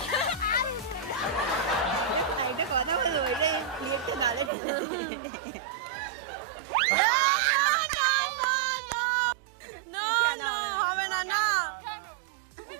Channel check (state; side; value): drops out; left; at 4.5 s